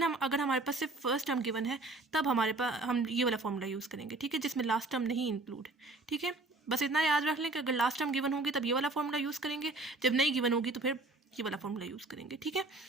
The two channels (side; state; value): left; quieter; 3.2 dB